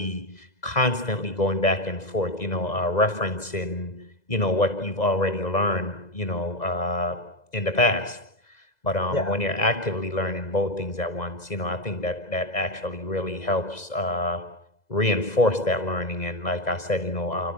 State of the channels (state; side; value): late; right; 2.0 ms